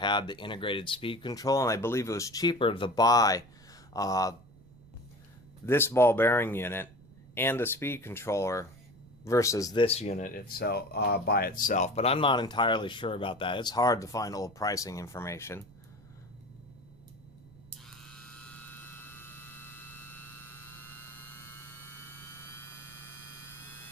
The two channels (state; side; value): noise; right; rumble, 24 dB below the sound